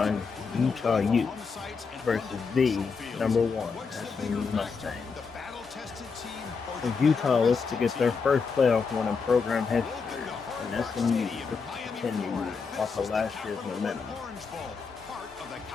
Utah Utes versus the number 1 SMU Mustangs. As Utah looks to get their first playoff win in program history, and SMU looks to continue off of last year's momentum.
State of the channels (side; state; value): right; quieter; 5.2 dB